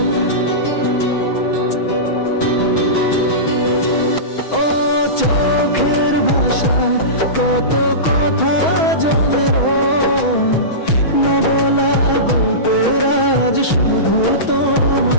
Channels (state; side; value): late; right; 6.2 ms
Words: ও চোখের ভাষায় কত কথা জমে রয়, না বলা গল্পের আজ শুধু